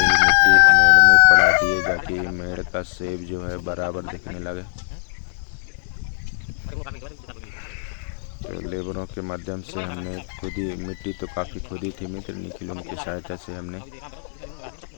मिट्टी मेड़ में पड़ा दिए, ताकि मेड़ का सेब जो है बराबर दिखने लगे। तो लेबरों के माध्यम से हमने खुद ही, मिट्टी तो काफ़ी खुदी थी मित्र, निखिल उनकी सहायता से हमने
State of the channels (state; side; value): silent; right; digital silence